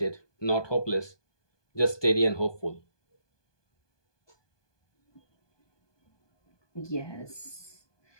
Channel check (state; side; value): late; right; 1.2 ms